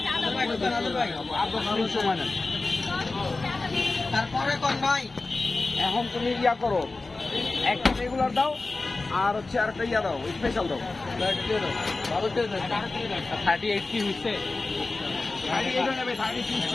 সময় না তারপরে কোন ভাই এখন তুমি ইয়া করো একটা রেগুলার দাও আর হচ্ছে আর একটা ইয়া দাও স্পেশাল দাও 38 কি হইছে 38 নেবে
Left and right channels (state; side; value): quieter; right; 3.5 dB